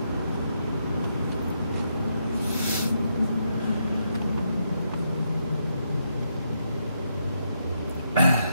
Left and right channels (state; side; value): inverted; both; correlation -0.79